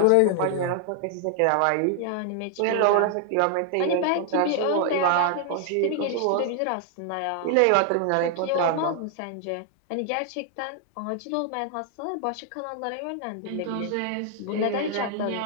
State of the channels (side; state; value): both; different; correlation 0.00